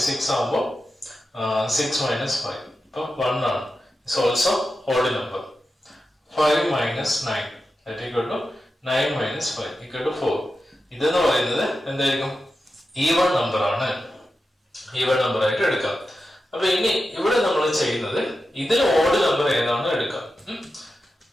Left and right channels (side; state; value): both; normal; correlation 0.91